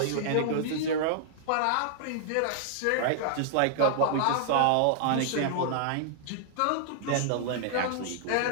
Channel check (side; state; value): both; different; correlation -0.01